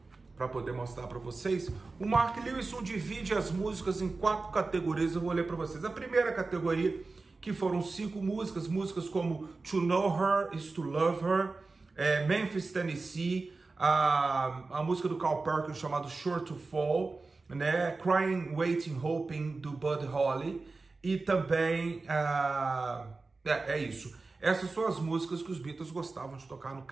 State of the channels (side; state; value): left; quieter; 3.7 dB